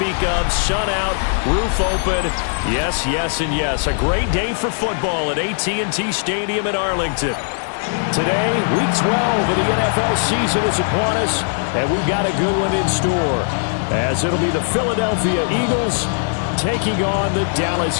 of. Sun out, roof open. Yes, yes, and yes. A great day for football at AT&T Stadium in Arlington. Today, Week 12 of the NFL season is upon us, and we've got a good one in store, as it'll be the Philadelphia Eagles taking on the Dallas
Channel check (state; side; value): silent; right; digital silence